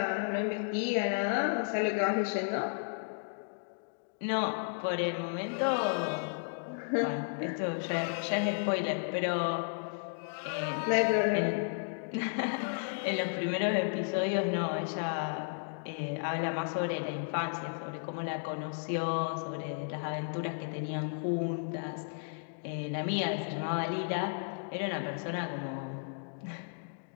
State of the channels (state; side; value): silent; right; digital silence